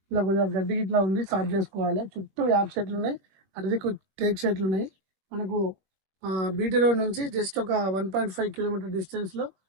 ఇలా కొద్దిగా గడ్డి ఇట్లా ఉంది, స్టార్ట్ చేసుకోవాలి. చుట్టూ యాప్ చెట్లు ఉన్నాయి, అరదికు టేక్ చెట్లు ఉన్నాయి. మనకు బీటీ రోడ్ నుంచి జస్ట్ ఒక 1.5 కిలోమీటర్ డిస్టెన్స్ లో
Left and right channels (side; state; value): left; late; 21 ms